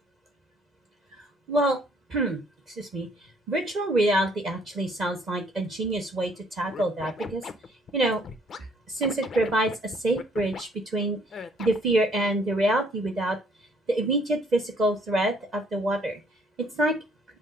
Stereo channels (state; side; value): normal; both; correlation 0.63